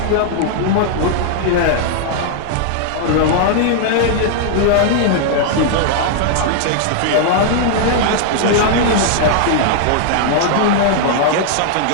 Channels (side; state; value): both; different; correlation -0.01